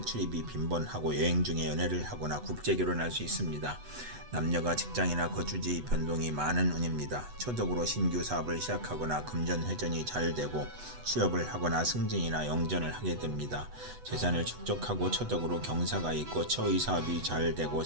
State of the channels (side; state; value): left; late; 8.1 ms